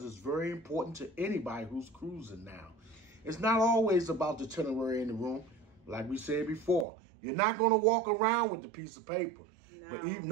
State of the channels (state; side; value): drops out; left; at 6.9 s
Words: it's very important to anybody who's cruising now. It's not always about the itinerary in the room. Like we said before, you're not going to walk around with the piece of paper. No. But